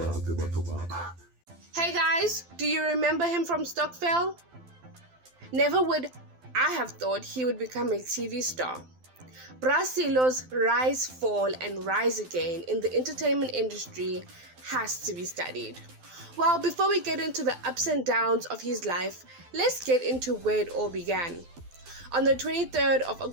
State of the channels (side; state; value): left; late; 12 ms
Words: Hey guys, do you remember him from Stockville? Never would I have thought he would become a TV star. Sello's rise, fall, and rise again in the entertainment industry has to be studied. Well, before we get into the ups and downs of his life, let's get into where it all began. On the 23rd of